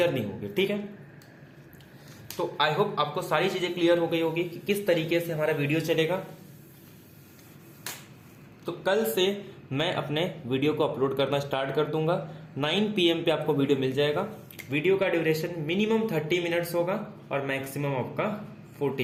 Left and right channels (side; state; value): both; identical; correlation 1.00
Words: होगी। ठीक है, तो आई होप आपको सारी चीजें क्लियर हो गई होगी कि किस तरीके से हमारा वीडियो चलेगा। तो कल से मैं अपने वीडियो को अपलोड करना स्टार्ट कर दूंगा। 9 PM पे आपको वीडियो मिल जाएगा। वीडियो का ड्यूरेशन मिनिमम 30 मिनट्स होगा और मैक्सिमम आपका